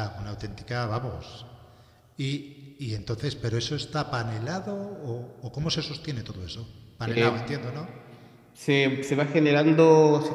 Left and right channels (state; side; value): identical; both; correlation 1.00